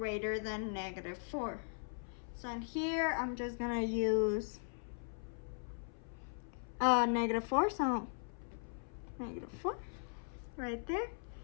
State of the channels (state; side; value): silent; right; 52 dB below the other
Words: than negative 4. So in here, I'm just going to use negative 4, so negative 4 right there.